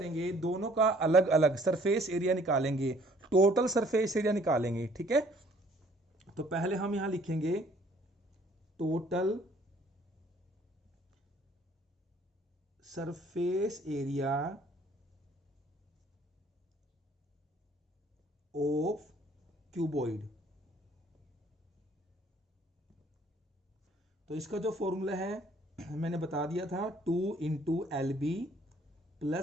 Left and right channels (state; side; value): normal; both; correlation 0.59